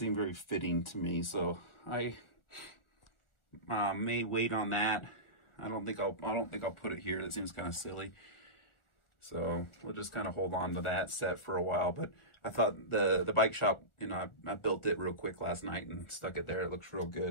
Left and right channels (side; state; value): right; late; 1.4 ms